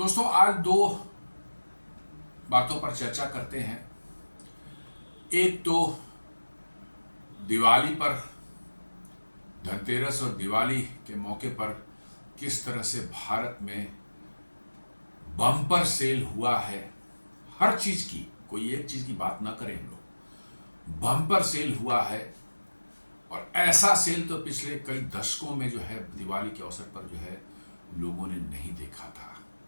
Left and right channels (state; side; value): inverted; both; correlation -1.00